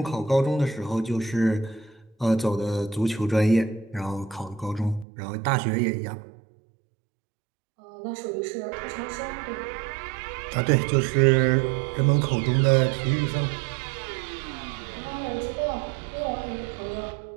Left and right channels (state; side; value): drops out; left; at 5.1 s